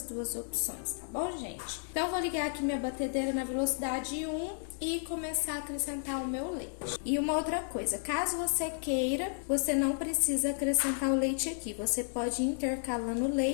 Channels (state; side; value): silent; right; digital silence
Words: 2 opções, tá bom, gente? Então, vou ligar aqui minha batedeira na velocidade 1 e começar a acrescentar o meu leite. E uma outra coisa, caso você queira, você não precisa acrescentar o leite aqui. Você pode ir intercalando o